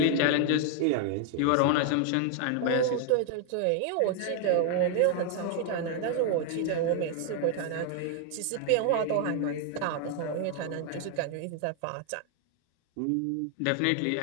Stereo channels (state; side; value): different; both; correlation 0.00